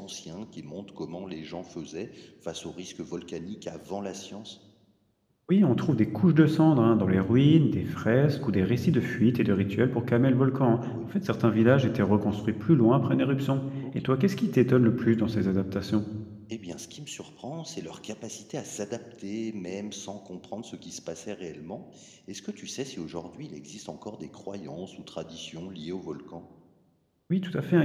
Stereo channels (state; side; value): identical; both; correlation 1.00